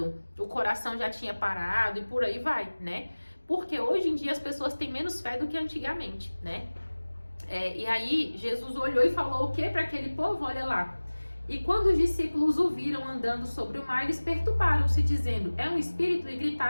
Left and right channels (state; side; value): inverted; both; correlation -1.00